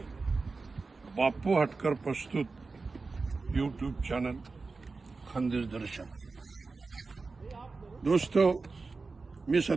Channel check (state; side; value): quieter; left; 4.0 dB